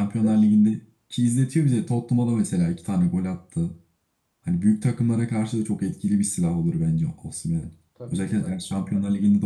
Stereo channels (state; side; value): identical; both; correlation 1.00